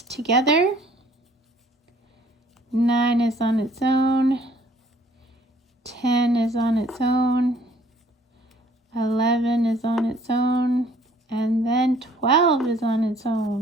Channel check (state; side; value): normal; both; correlation 0.59